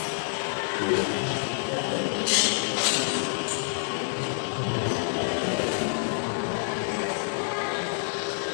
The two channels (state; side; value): silent; right; digital silence